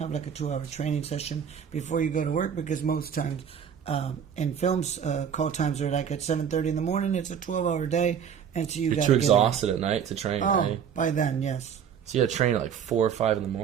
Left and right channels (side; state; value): left; quieter; 8.0 dB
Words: like a 2-hour training session before you go to work, because most times in films, call times are like at 7:30 in the morning. It's a 12-hour day, and so you're too exhausted at night to train. Oh, right? By then, yes. So you had to train at like 4 or 5 in the